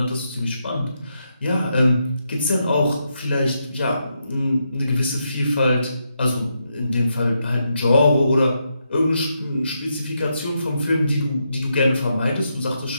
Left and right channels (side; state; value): both; inverted; correlation -0.82